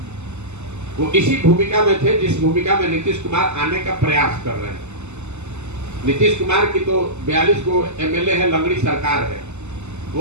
वो इसी भूमिका में थे जिस भूमिका में नीतीश कुमार आने का प्रयास कर रहे हैं। नीतीश कुमार की तो 42 को एमएलए है, लंगड़ी सरकार है।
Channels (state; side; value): late; left; 0.83 ms